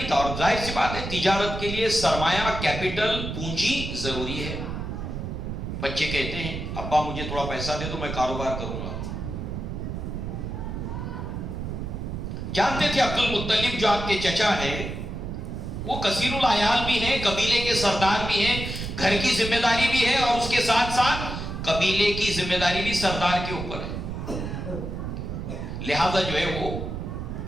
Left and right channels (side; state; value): right; noise; rumble, 5 dB below the sound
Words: تھا، اور ظاہر سی بات ہے تجارت کے لیے سرمایہ، کیپٹل، پونجی ضروری ہے. بچے کہتے ہیں ابا مجھے تھوڑا پیسہ دے دو میں کاروبار کروں گا. جانتے تھے عبد المطلب جو آپ کے چچا ہے وہ کثیر العیال بھی ہیں، قبیلے کے سردار بھی ہیں، گھر کی ذمہ داری بھی ہے، اور اس کے ساتھ ساتھ قبیلے کی ذمہ داری بھی سردار کے اوپر ہے. لہذا جو ہے وہ